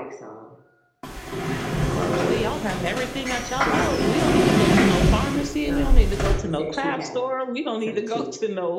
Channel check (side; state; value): both; identical; correlation 1.00